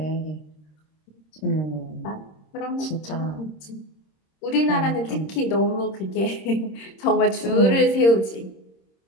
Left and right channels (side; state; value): right; late; 26 ms